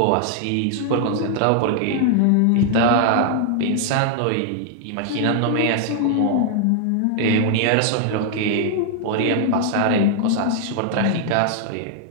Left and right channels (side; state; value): both; different; correlation 0.00